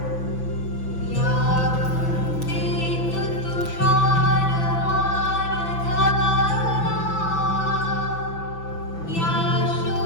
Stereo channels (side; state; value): right; late; 6.0 ms